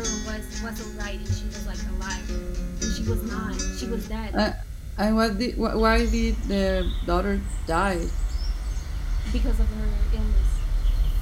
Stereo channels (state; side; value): identical; both; correlation 1.00